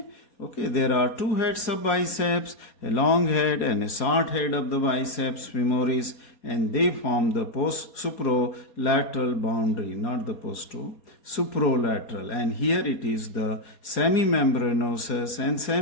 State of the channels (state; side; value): late; right; 4.2 ms